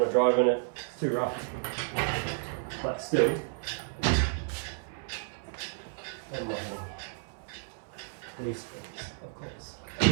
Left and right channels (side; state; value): left; silent; 57 dB below the other